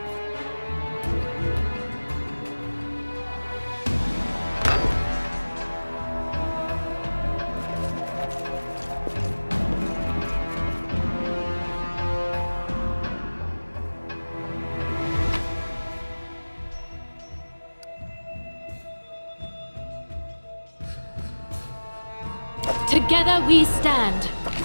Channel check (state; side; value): inverted; both; correlation -1.00